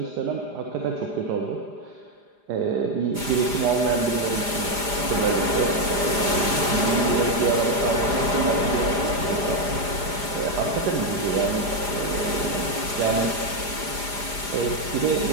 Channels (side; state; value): left; late; 4.9 ms